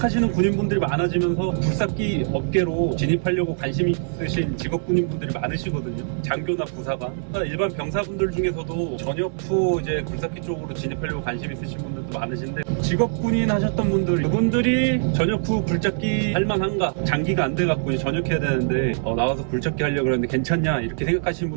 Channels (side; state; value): left; silent; 62 dB below the other